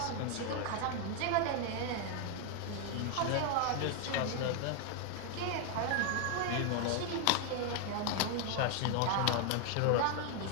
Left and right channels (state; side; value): different; both; correlation 0.00